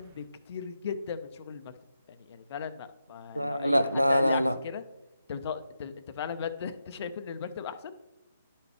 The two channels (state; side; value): inverted; both; correlation -0.85